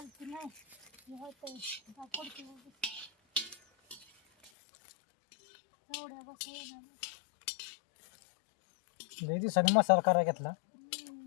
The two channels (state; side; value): drops out; right; at 4.5 s